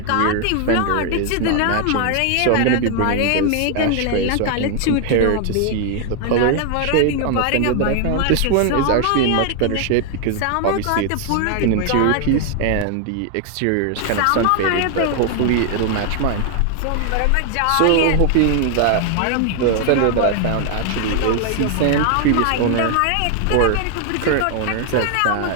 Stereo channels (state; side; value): different; both; correlation 0.00